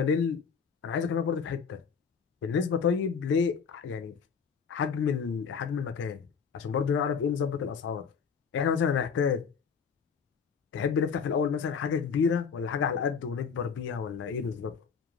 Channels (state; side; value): quieter; right; 6.2 dB